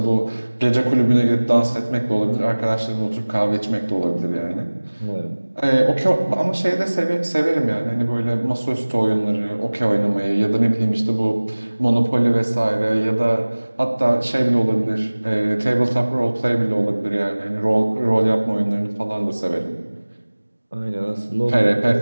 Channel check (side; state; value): both; inverted; correlation -1.00